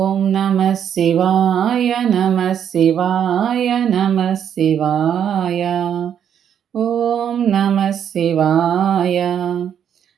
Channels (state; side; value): quieter; left; 8.8 dB